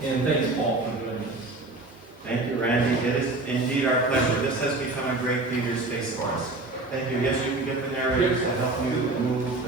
and thanks, Paul, for joining us. Thank you, Randy. It is indeed our pleasure. This has become a great theater space for us. Thank you. Yes, you can get the narrators to help you move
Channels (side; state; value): left; quieter; 3.1 dB